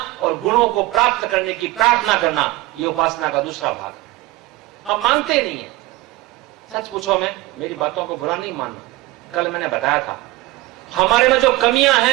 और गुणों को प्राप्त करने की प्रार्थना करना, ये उपासना का दूसरा भाग। हम मानते नहीं है। सच पूछो, मैं मेरी बातों को बुरा नहीं मानना। कल मैंने बताया था, हमारे में जो कमियां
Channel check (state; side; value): quieter; left; 19.5 dB